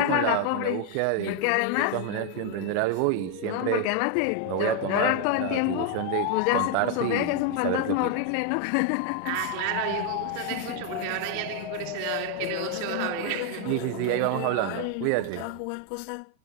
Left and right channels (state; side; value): different; both; correlation 0.01